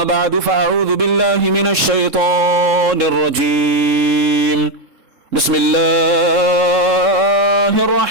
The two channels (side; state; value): left; late; 3.7 ms